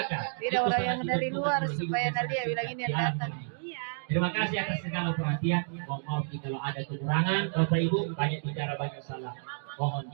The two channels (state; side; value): silent; left; digital silence